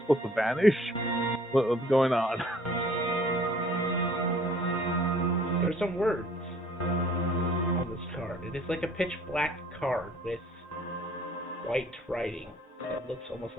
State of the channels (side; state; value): both; normal; correlation 0.56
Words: supposed to vanish? What's going on? There's some words on this card. It is like a pitch black card with white writing. It looks almost